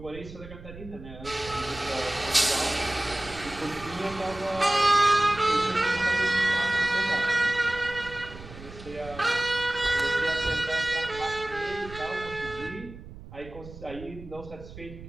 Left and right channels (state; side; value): noise; right; rumble, 15 dB below the sound